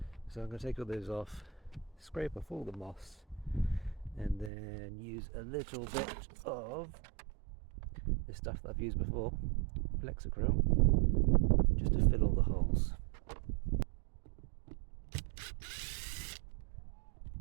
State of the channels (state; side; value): drops out; left; at 4.5 s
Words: So I'm going to take all those off, scrape off all the moss, and then use a little bit of this stuff that I've used before, Flexacryl, just to fill all the holes.